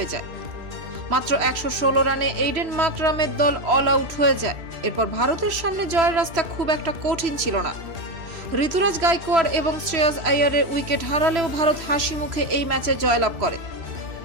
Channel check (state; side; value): late; left; 3.0 ms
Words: যায়। মাত্র 116 রানে এইডেন মাকরামের দল অল আউট হয়ে যায়। এরপর ভারতের সামনে জয়ের রাস্তা খুব একটা কঠিন ছিল না। ঋতুরাজ গাইকোয়াড় এবং শ্রেয়াস আইয়ারের উইকেট হারালেও ভারত হাসি মুখে এই ম্যাচে জয়লাভ করে।